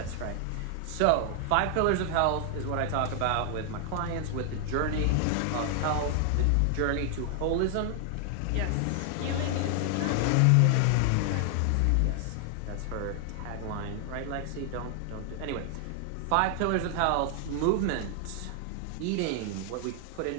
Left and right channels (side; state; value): both; different; correlation 0.00